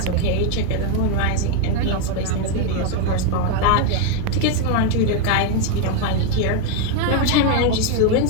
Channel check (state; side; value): different; both; correlation 0.01